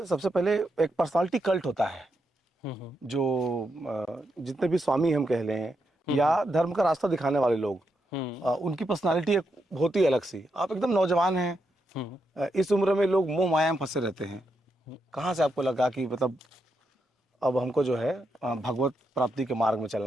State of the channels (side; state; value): both; normal; correlation 0.83